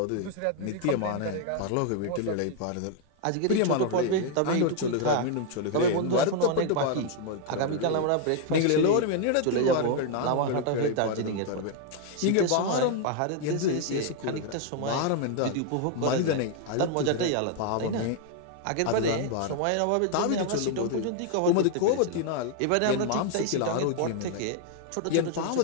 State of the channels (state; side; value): different; both; correlation 0.00